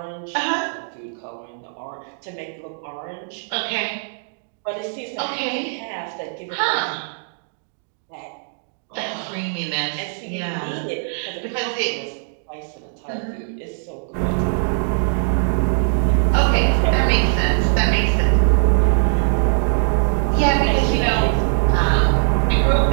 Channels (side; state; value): left; silent; digital silence